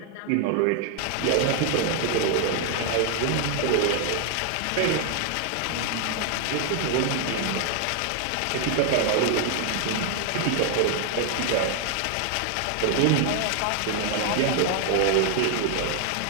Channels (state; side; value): different; both; correlation 0.00